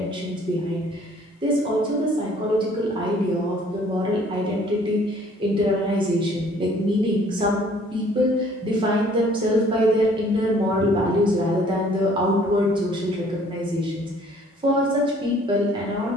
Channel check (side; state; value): both; normal; correlation 0.57